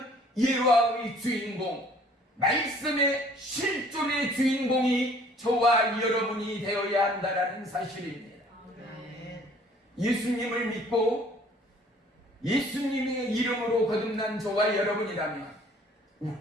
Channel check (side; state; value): both; normal; correlation 0.56